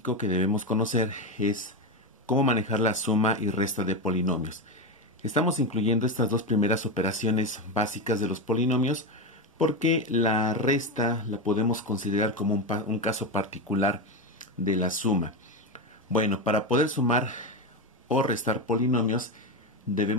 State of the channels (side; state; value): both; normal; correlation 0.14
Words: que debemos conocer es cómo manejar la suma y resta de polinomios. Estamos incluyendo estas dos primeras operaciones básicas de los polinomios porque la resta la podemos considerar como un caso particular de la suma. Bueno, para poder sumar o restar polinomios